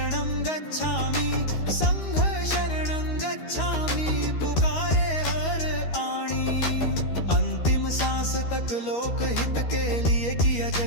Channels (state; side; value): late; right; 13 ms